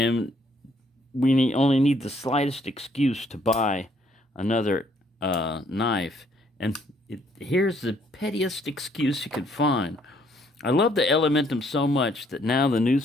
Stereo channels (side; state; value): both; normal; correlation 0.67